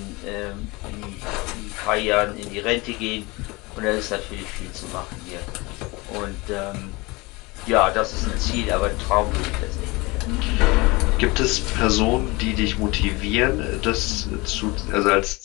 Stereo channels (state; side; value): quieter; right; 24.2 dB